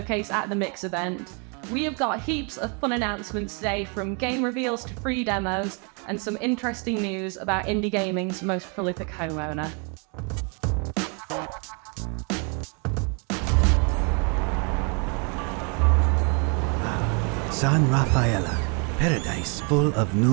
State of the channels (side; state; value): left; quieter; 36.2 dB